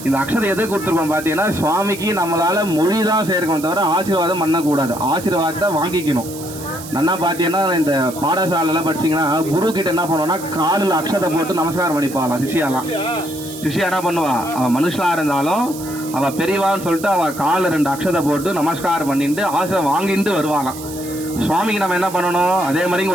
இந்த அக்ஷதை எதை கொடுத்துருக்கோம் பார்த்தீங்கன்னா, சுவாமிக்கு நம்மளால் மொழி தான் சேர்க்கணும், தவிர ஆசீர்வாதம் பண்ணக்கூடாது. ஆசீர்வாதத்தை வாங்கிக்கணும். நன்னா பார்த்தீங்கன்னா, இந்த பாடசாலையில் படிச்சிங்கன்னா குரு கிட்ட என்ன பண்ணுவோன்னா, காலில் அக்ஷதை போட்டு நமஸ்காரம் பண்ணிப்பாங்களாம் சிஷியாலாம். சிஷியா என்ன பண்ணுவா, அவன் மனுஷனாக இருந்தாலும் அவள் பெரியவான்னு சொல்லிட்டு அவள் காலில் 2 அக்ஷதை போட்டு நமஸ்காரம் பண்ணிட்டு ஆசீர்வாதம் வாங்கிட்டு வருவாளாம். சுவாமிக்கு நம்ம என்ன பண்ணணும், அதே மாதிரி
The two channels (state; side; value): noise; right; hiss, 14 dB below the sound